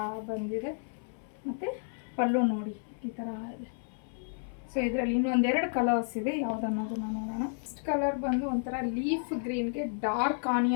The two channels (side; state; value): right; silent; 57 dB below the other